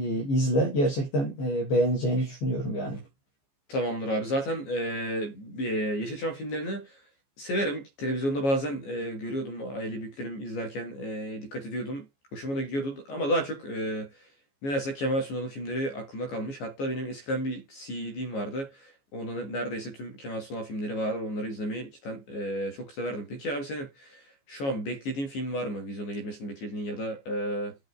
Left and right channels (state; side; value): late; right; 14 ms